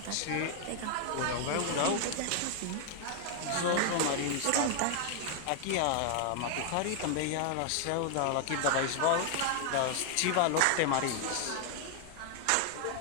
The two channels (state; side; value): different; both; correlation 0.00